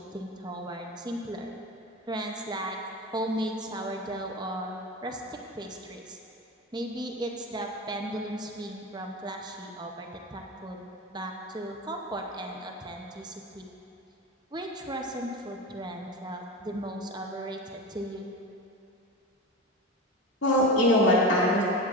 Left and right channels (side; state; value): both; normal; correlation 0.25